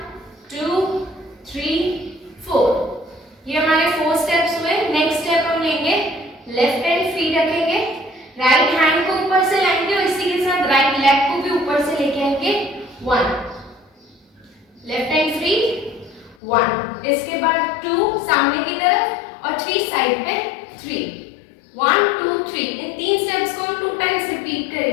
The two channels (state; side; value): drops out; right; at 16.4 s